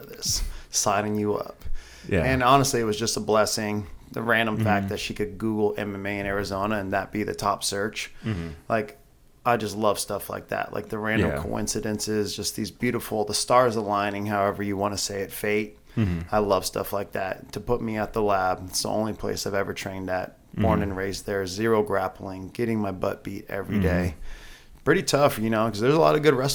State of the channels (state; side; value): identical; both; correlation 1.00